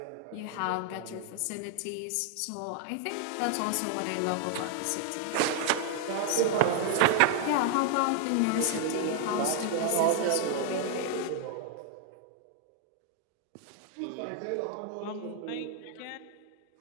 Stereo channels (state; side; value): different; both; correlation 0.00